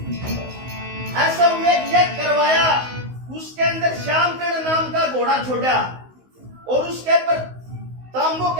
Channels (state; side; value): late; left; 16 ms